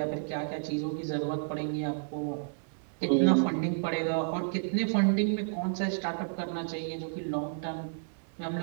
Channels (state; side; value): silent; left; 57 dB below the other